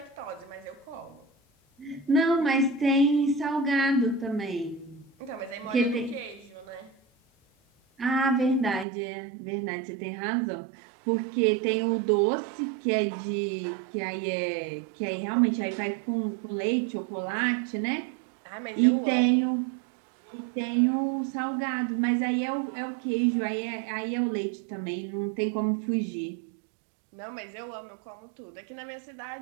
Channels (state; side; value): drops out; left; at 8.8 s